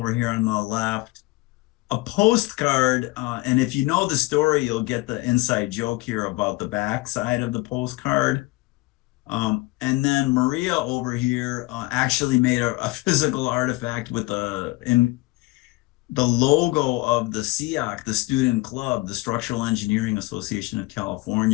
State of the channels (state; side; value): quieter; right; 21.9 dB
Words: here on the left. A postcard, and if you know the story, you'll get the inside joke here about the back side of the postcard. And then Maria over here actually made a physical artifact with the logo of the SEAC, the student club, the Structural Engineering Association of